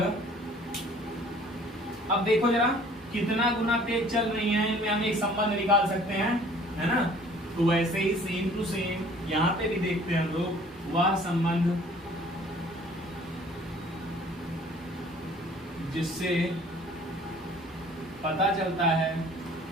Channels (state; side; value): normal; both; correlation 0.53